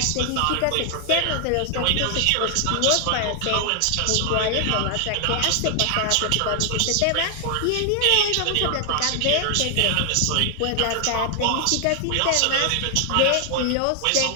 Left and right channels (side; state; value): both; different; correlation 0.00